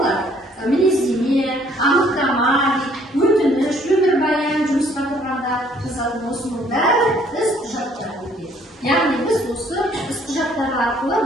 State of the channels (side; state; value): both; normal; correlation 0.62